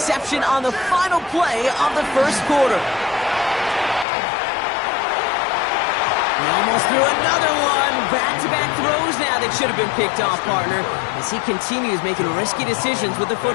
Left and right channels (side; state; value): right; drops out; at 4.0 s